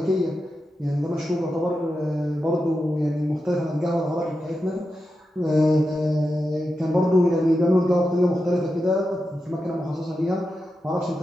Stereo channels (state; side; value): normal; both; correlation 0.89